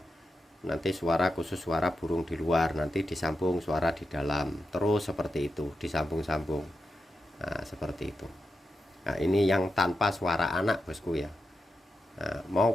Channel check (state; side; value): normal; both; correlation 0.88